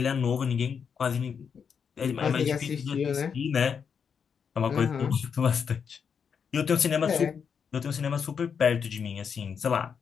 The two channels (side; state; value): right; quieter; 6.7 dB